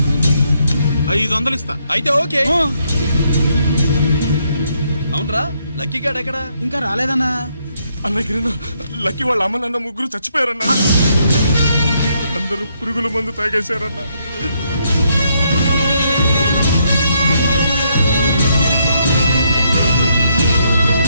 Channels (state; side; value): inverted; both; correlation -0.74